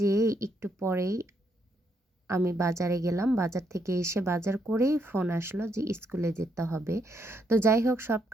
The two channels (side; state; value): both; normal; correlation 0.76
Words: একটু পরেই আমি বাজারে গেলাম। বাজার থেকে এসে বাজার করেই ফোন আসলো যে স্কুলে যেতে হবে। তো যাই হোক, সব